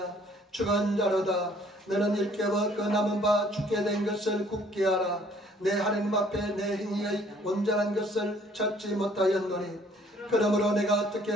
죽은 자로다. 너는 일깨워 그 남은 바 죽게 된 것을 굳게 하라. 내 하나님 앞에 내 행위의 온전한 것을 찾지 못하였노니 그러므로 내가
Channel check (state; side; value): normal; both; correlation 0.59